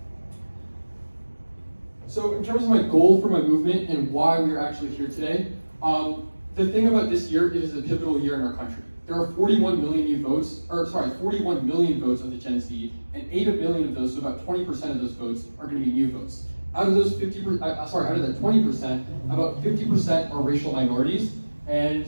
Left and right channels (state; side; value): inverted; both; correlation -1.00